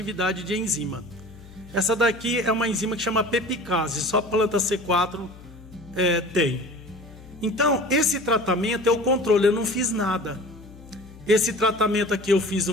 de enzima. Essa daqui é uma enzima que chama pepicase, só planta C4 tem. Então, esse tratamento é o controle, eu não fiz nada. Esse tratamento aqui eu fiz o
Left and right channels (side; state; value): left; noise; hum, 19 dB below the sound